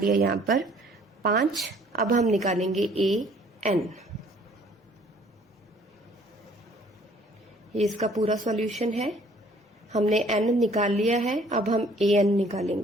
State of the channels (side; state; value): both; normal; correlation 0.58